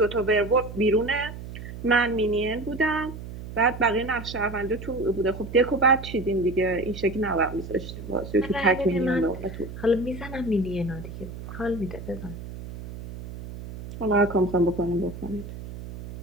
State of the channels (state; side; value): noise; right; hum, 11 dB below the sound